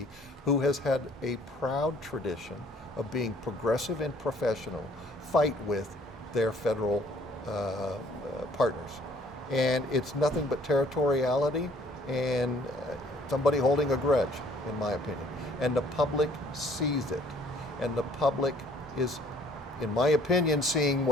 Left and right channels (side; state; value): both; normal; correlation 0.59